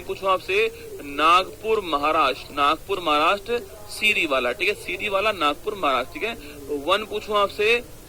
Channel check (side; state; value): both; identical; correlation 1.00